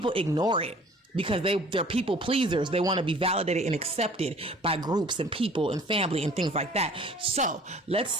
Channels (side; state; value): both; normal; correlation 0.50